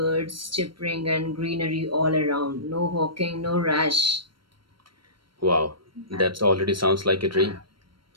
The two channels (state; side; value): late; left; 0.73 ms